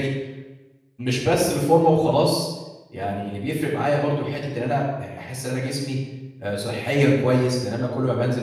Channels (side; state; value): both; identical; correlation 1.00